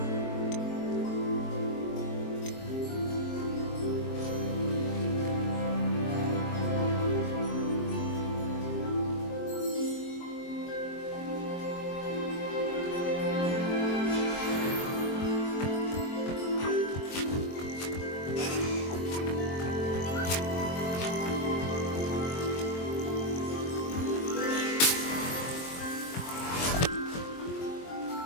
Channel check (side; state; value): right; late; 22 ms